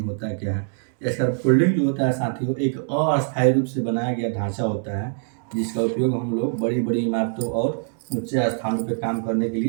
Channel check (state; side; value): silent; left; digital silence